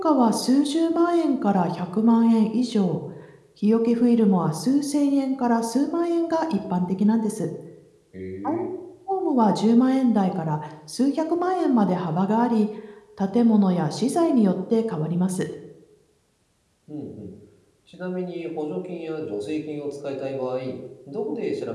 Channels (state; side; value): identical; both; correlation 1.00